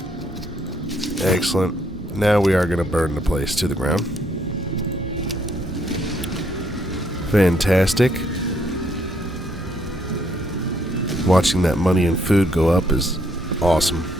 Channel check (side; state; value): both; normal; correlation 0.71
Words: Excellent. Now we are going to burn the place to the ground. Fantastic. Watching that money and food go up is awesome.